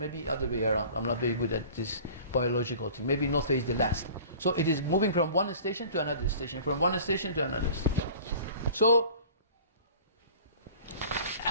other way around. I'm not very good at this biological thing. Maybe nutfe is the last. So it is moving from one station to another station, from one station to another station. So,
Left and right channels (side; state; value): both; inverted; correlation -0.44